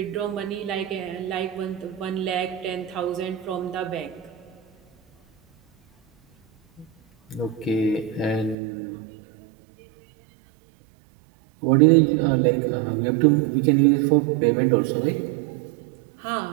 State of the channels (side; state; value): left; drops out; at 8.6 s